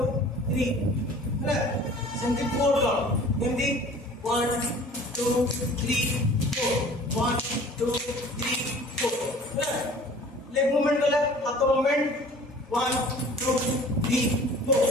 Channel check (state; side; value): normal; both; correlation 0.47